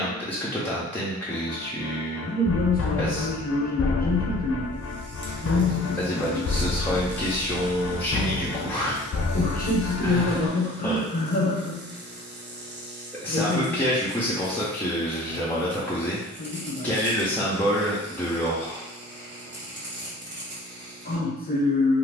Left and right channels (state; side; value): normal; both; correlation 0.49